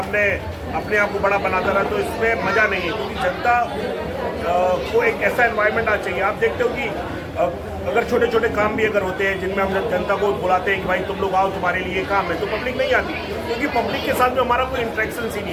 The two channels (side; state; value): both; identical; correlation 1.00